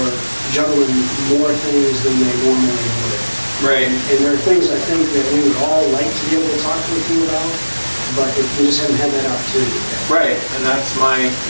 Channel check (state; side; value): inverted; both; correlation -1.00